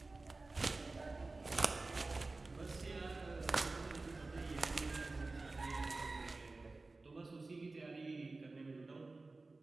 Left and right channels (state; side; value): quieter; left; 3.4 dB